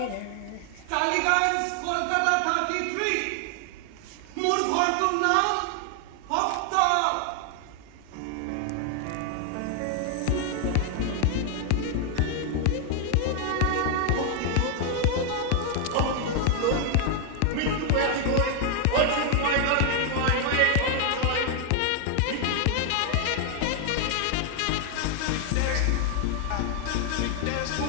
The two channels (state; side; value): different; both; correlation 0.00